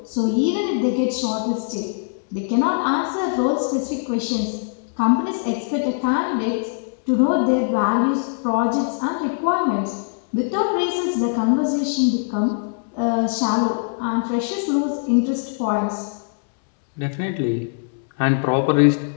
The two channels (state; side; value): silent; right; 64 dB below the other